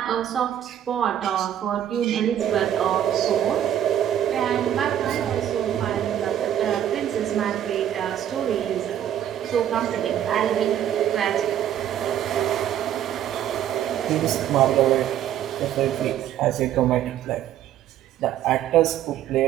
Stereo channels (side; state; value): left; quieter; 10.8 dB